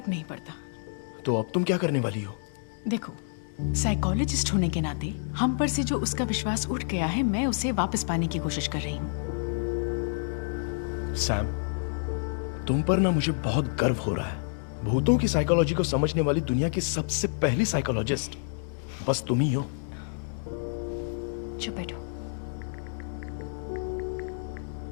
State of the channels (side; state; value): right; silent; digital silence